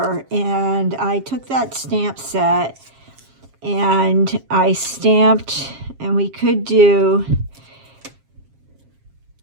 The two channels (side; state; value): left; late; 7.4 ms